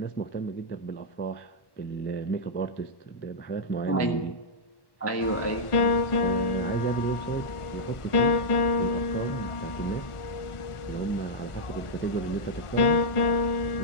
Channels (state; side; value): late; right; 1.4 ms